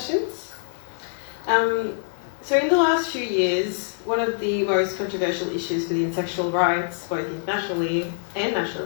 So in the last few years, one of the most controversial issues within sexual rights, both internationally and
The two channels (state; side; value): silent; right; 62 dB below the other